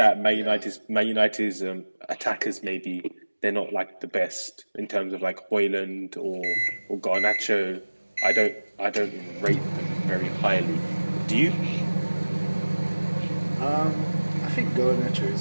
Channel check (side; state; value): both; inverted; correlation -1.00